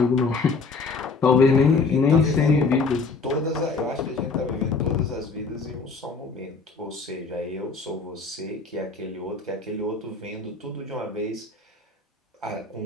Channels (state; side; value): quieter; right; 4.3 dB